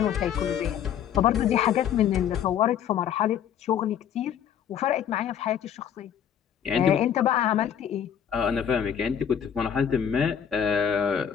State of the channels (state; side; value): quieter; right; 8.8 dB